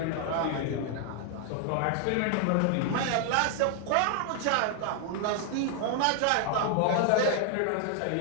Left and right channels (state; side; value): different; both; correlation 0.00